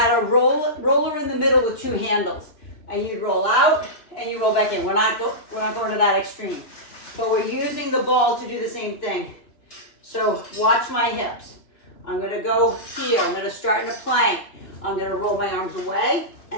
a roller in the middle with 2 handles. And you'd roll out and you roll back in. We're not going to that extreme. But we're using the ball to do the same thing. So watch my hips. I'm going to go here. I'm going to start in a plank. I'm going to roll my arms away.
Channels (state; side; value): late; right; 2.9 ms